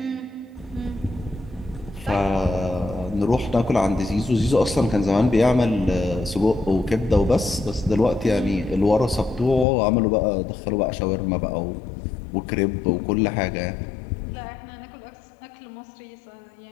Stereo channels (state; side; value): drops out; right; at 9.7 s